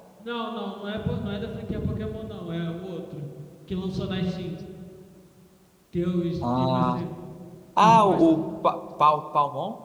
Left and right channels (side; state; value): both; identical; correlation 1.00